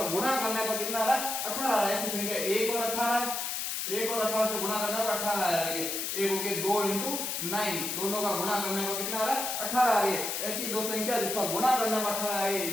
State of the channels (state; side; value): noise; left; hiss, 2 dB below the sound